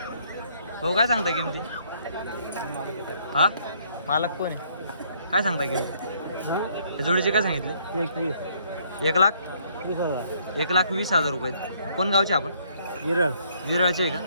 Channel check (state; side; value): inverted; both; correlation -0.66